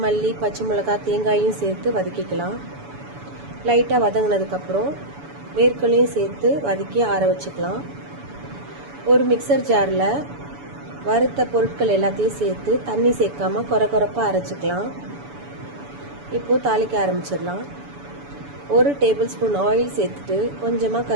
மல்லி, பச்சை மிளகாய், தேங்காயும் சேர்த்து வதக்கிக்கலாம். லைட்டாக வதங்கினதுக்கப்புறம் வேர்க்கடலையும் சேர்த்து வதக்கி ஆற வச்சுக்கலாம். ஒரு மிக்சர் ஜாரில் வறுத்த பொருட்கள் எல்லாத்தையும் சேர்த்து தண்ணி சேர்க்காம கொரப்பாக அரைச்சிக்கலாம். இப்போது தாளிக்க ஆரம்பிச்சிடலாம். 1 டேபிள் ஸ்பூன் ஆயில் சேர்த்துட்டு கொஞ்சமாக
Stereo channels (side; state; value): left; late; 7.0 ms